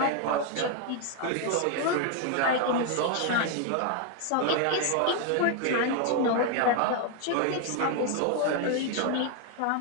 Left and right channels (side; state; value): both; different; correlation 0.01